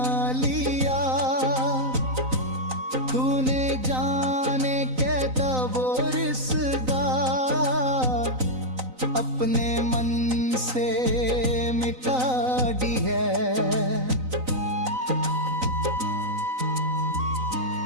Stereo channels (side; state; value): left; late; 3.9 ms